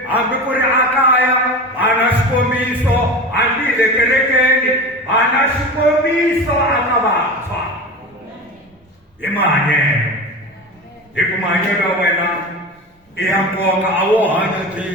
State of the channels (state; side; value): normal; both; correlation 0.29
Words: hambi ku ri ekaya va na xikombiso, hambi hi le kerekeni va na xikombiso aka vantshwa hi mahanyelo. Hi ku mahanyelo ya wena i ya nkoka, a wo hanya byi,